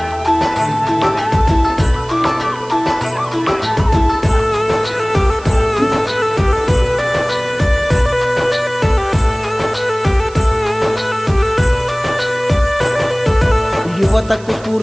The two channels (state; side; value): noise; right; hiss, 22 dB below the sound